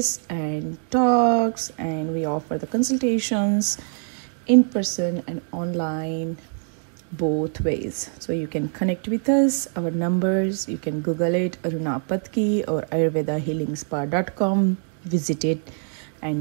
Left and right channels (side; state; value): left; silent; 56 dB below the other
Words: and talks, and we offer the consultations in person and online, both ways. So you can connect with us. Our numbers, you can Google it, Aruna Patki or ayurvedahealingspa.com. Visit it